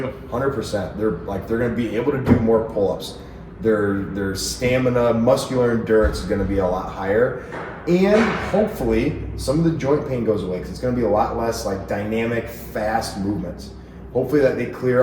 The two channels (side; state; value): both; identical; correlation 1.00